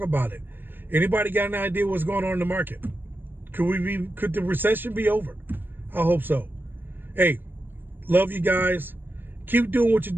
it. Anybody got an idea what's going on in the market? Could the recession be over? I hope so. Hey, love you guys. Keep doing what you're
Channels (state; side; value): late; left; 0.095 ms